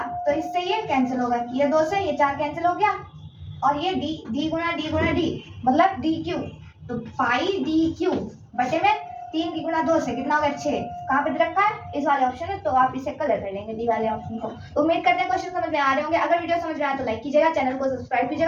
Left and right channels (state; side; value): identical; both; correlation 1.00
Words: तो इससे ये कैंसिल होगा, ये 2 से ये 4 कैंसिल हो गया, और ये d गुणा d मतलब dq। तो पाई dq बटे में 3 की गुणा 2 से कितना हो गया 6। कहाँ पे दे रखा है, इस वाले ऑप्शन में। तो आप इसे कलर कर लेंगे डी वाले ऑप्शन को। तो उम्मीद करते हैं क्वेश्चन समझ में आ रहे होंगे। अगर वीडियो समझ में आया तो लाइक कीजिएगा, चैनल को सब्सक्राइब